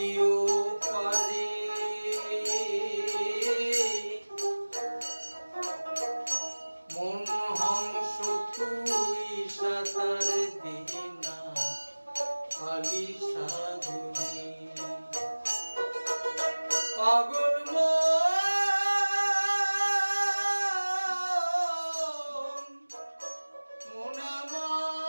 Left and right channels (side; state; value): both; inverted; correlation -1.00